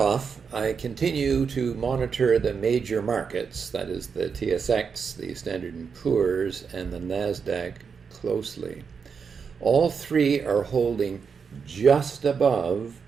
I continue to monitor the major markets, that is the TSX, the Standard & Poor's, and the NASDAQ closely. All three are holding just above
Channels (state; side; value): quieter; left; 6.0 dB